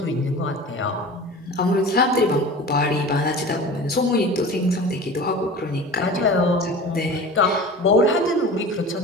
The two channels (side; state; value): both; normal; correlation 0.36